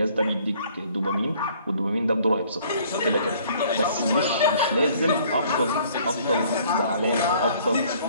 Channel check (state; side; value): inverted; both; correlation -0.57